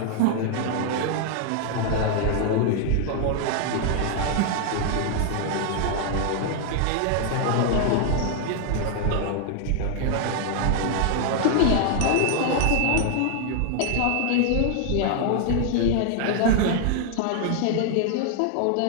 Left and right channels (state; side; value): different; both; correlation 0.00